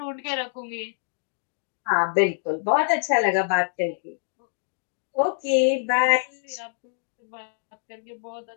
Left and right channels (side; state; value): right; silent; digital silence